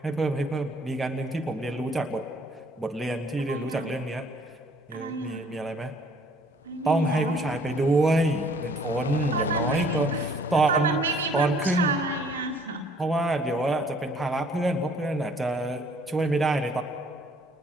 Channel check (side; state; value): both; normal; correlation 0.59